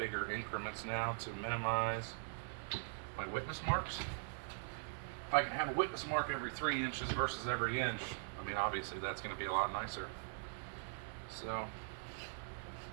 increments now to minimize my witness marks. If I can have a witness mark every 3 inches versus every inch, I mean, obviously that's going to be a lot nicer. So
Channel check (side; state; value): left; silent; digital silence